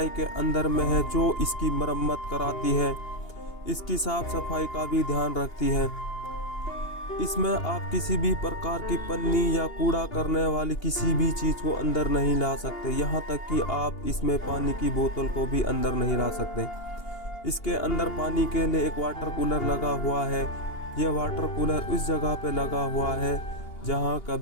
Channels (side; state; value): right; late; 2.8 ms